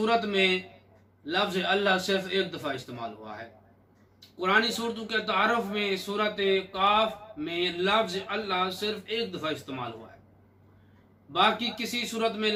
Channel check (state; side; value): identical; both; correlation 1.00